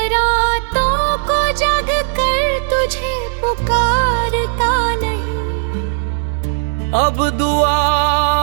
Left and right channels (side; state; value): left; silent; 69 dB below the other